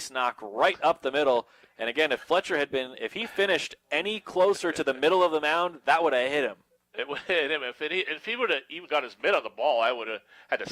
knock right up the middle. And again, if he finished any closer to the middle of the mound, that would have hit him. It would hit him. If he would have even got his mitt on the ball, I would have had to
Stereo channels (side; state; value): both; identical; correlation 1.00